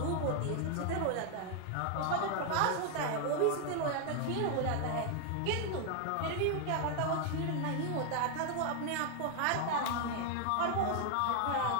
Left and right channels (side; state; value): both; different; correlation 0.00